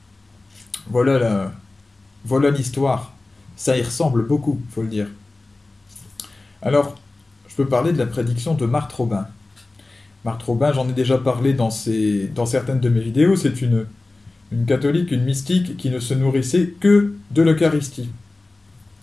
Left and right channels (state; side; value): quieter; right; 3.2 dB